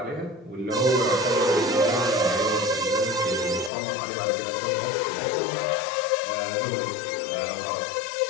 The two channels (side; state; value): right; drops out; at 3.7 s